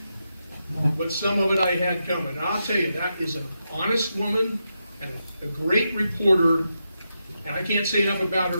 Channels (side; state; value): both; inverted; correlation -0.86